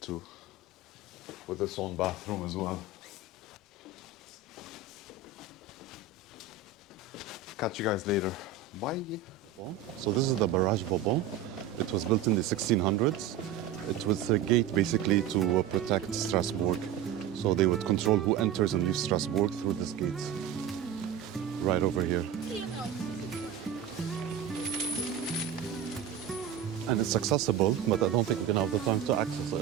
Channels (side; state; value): left; quieter; 7.7 dB